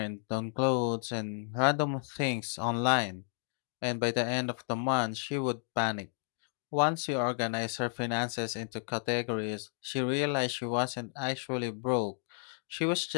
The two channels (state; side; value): silent; right; 56 dB below the other